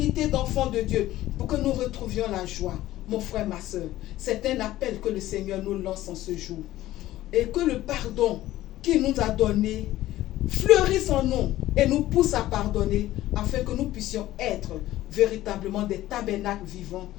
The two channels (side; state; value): right; quieter; 15.1 dB